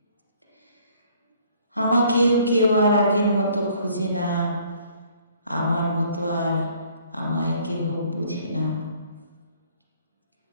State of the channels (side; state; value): both; inverted; correlation -0.59